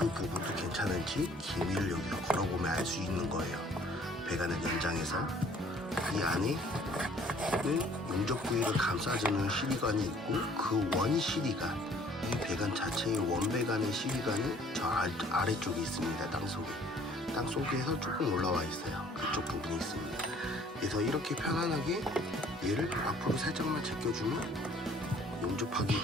부분도 괜찮은지 기미를 여기서 걸어보면 알 수 있는 거예요. 배관을 연장해서 이 안에는 용접 부위를 감싸주는 CD관이 있고, 그 원 CD관, 이 배관 자체의 원배관의 CD관은 저 아래쪽에 있습니다. 땅속에서 조금 올라와 있어요. 그쪽 부분이 있습니다. 그래서 이렇게 편안하게 얘를 앞으로 살짝만 제껴주면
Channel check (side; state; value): both; normal; correlation 0.57